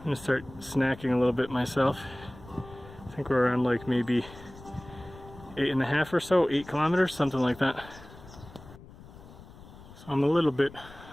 gonna start snacking a little bit myself. I think we're around like maybe 8.5 or so, 8 kilometers, something like that. So I'm a little bit,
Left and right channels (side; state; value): left; noise; rumble, 19 dB below the sound